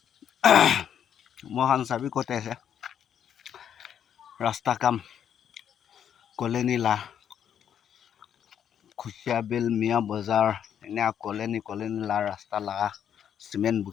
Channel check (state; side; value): quieter; right; 9.0 dB